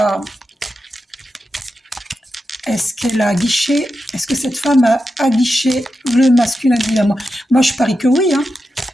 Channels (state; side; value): normal; both; correlation 0.89